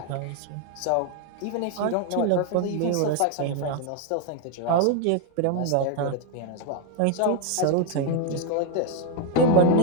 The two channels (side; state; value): both; different; correlation 0.01